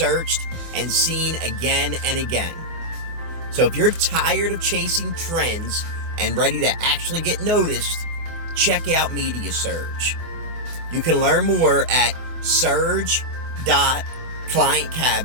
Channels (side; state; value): left; late; 24 ms